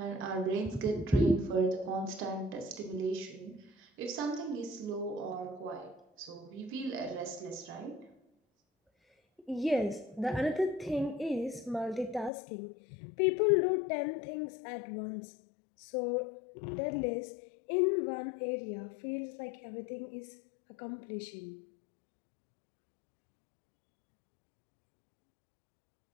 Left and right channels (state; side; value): drops out; right; at 12.3 s